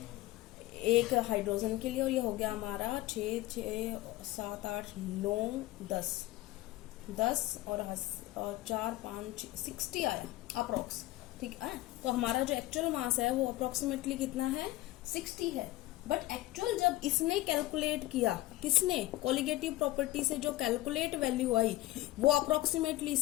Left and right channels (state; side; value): quieter; right; 17.4 dB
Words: एक हाइड्रोजन के लिए, और ये हो गया हमारा 6, 6, 7, 8, 9, 10 और 4, 5, 60 आया अप्रोक्स। ठीक है। तो हमारा जो एक्चुअल मास है वो अप्रोक्सीमेटली कितना है, 60 है। बट एक्चुअल जब इसने कैलकुलेट किया, किसने, कोलिगेटिव प्रॉपर्टी से जो कैलकुलेट वैल्यू आई वो अप्रोक्सीमेटली